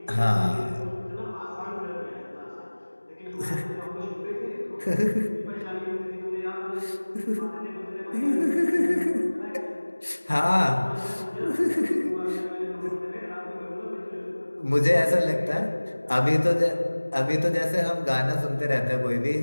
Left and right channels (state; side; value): inverted; both; correlation -1.00